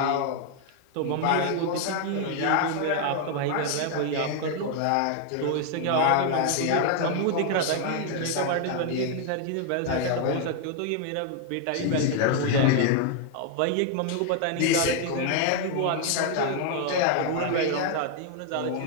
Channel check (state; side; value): different; both; correlation 0.00